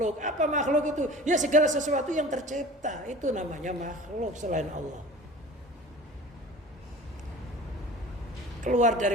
Apa makhluk itu? Ya segala sesuatu yang tercipta, itu namanya makhluk selain Allah. Keluar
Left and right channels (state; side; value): normal; both; correlation 0.41